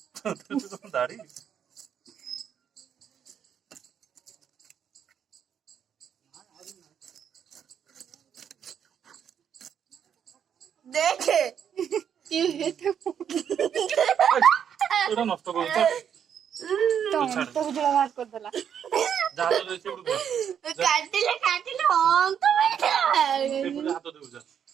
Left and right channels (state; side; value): quieter; left; 8.4 dB